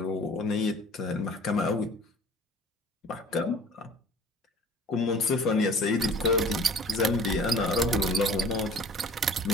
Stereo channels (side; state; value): both; normal; correlation 0.47